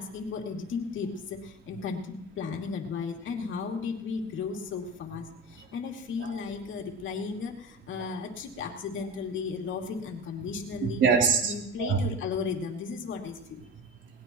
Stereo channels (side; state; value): both; normal; correlation 0.30